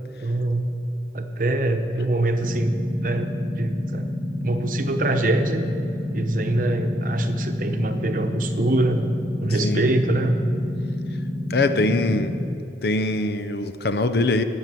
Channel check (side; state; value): both; normal; correlation 0.70